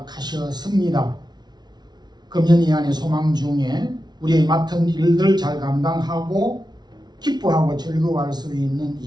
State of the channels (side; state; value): left; late; 0.20 ms